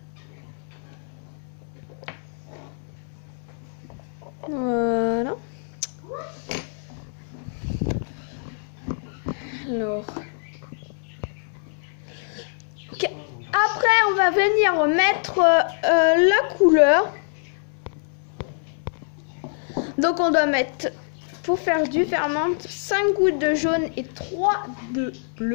Voilà. Alors. Okay. Après, on va venir mettre la couleur. Donc, on doit mettre, pour faire du ferment, 5 gouttes de jaune et 3 de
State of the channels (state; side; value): silent; right; digital silence